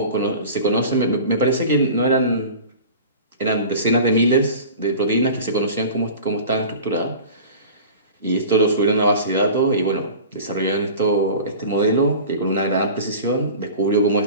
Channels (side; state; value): both; inverted; correlation -0.38